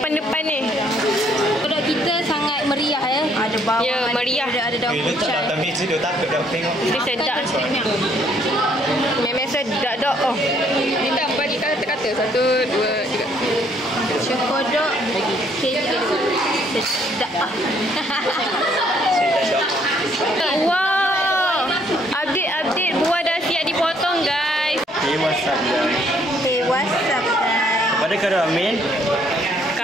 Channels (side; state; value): both; normal; correlation 0.66